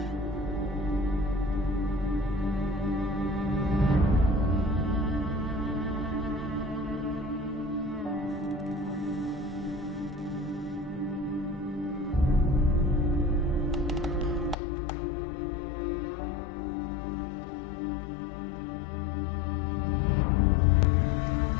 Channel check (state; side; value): drops out; right; at 14.6 s